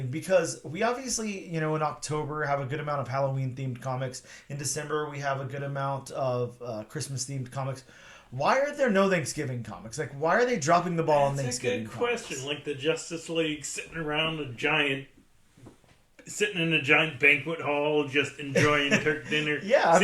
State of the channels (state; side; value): identical; both; correlation 1.00